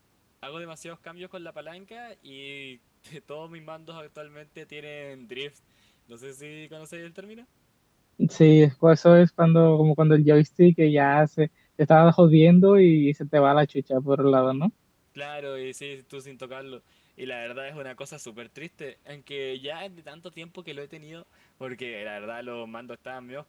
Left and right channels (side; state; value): both; identical; correlation 1.00